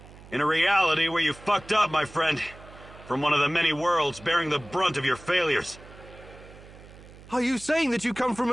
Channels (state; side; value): noise; right; hum, 20 dB below the sound